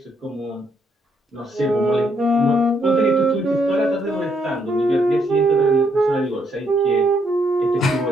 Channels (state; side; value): normal; both; correlation 0.73